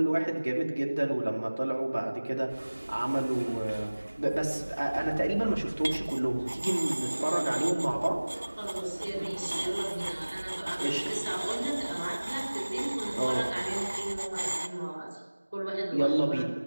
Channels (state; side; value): inverted; both; correlation -1.00